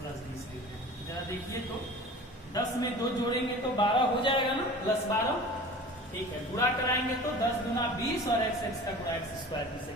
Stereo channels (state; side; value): normal; both; correlation 0.39